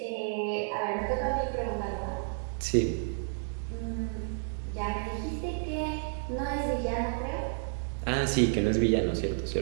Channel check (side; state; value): left; silent; digital silence